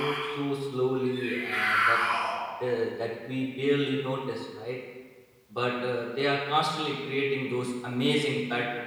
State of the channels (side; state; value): both; identical; correlation 1.00